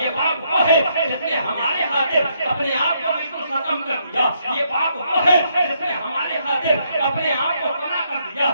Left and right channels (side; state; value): both; inverted; correlation -0.74